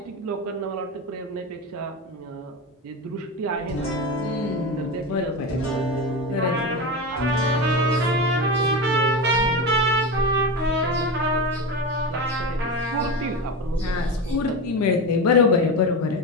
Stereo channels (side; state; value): both; normal; correlation 0.21